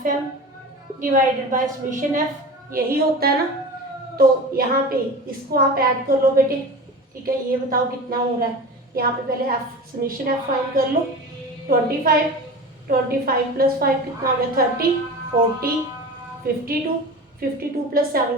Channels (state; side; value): normal; both; correlation 0.32